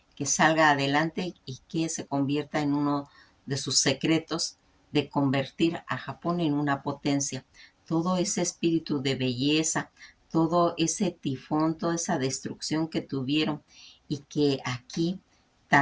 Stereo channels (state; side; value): identical; both; correlation 1.00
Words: que salga adelante y que se convierta en uno de sus secretos de convertir a Japón en una potencia. Todo ese espíritu de belleza, todo ese tifón, toda esa destrucción que tuvieron y que aquí